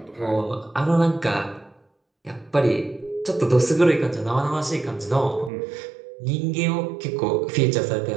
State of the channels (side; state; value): left; drops out; at 5.5 s